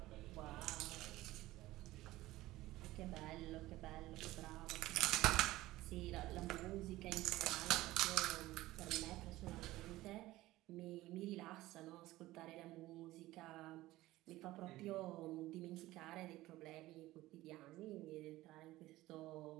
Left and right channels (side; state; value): left; quieter; 17.2 dB